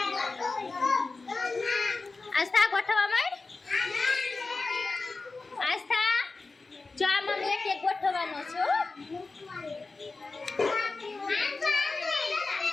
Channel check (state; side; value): quieter; right; 3.7 dB